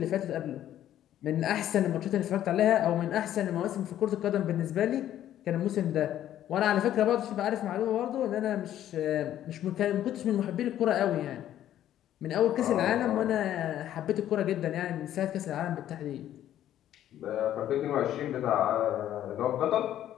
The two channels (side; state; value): right; quieter; 11.8 dB